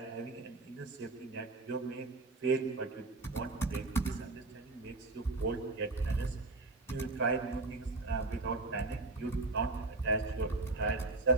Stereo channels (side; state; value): left; quieter; 3.1 dB